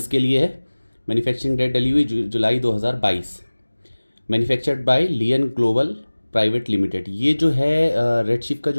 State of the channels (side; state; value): both; inverted; correlation -1.00